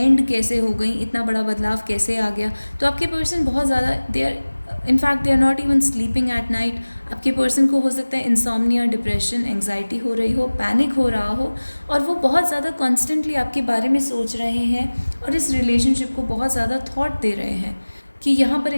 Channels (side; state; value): both; inverted; correlation -1.00